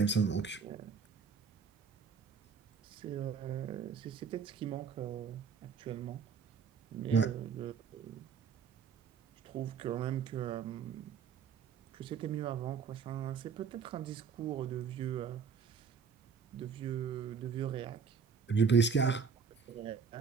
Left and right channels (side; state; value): left; quieter; 6.1 dB